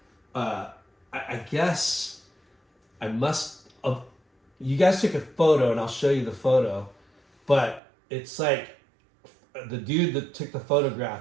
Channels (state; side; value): drops out; left; at 7.8 s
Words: I guess I must have. You guys took a photo, and I'll show you the photo, but it's like the dude that took the